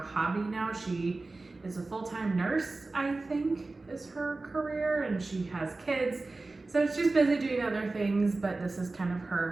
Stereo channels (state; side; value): quieter; left; 3.3 dB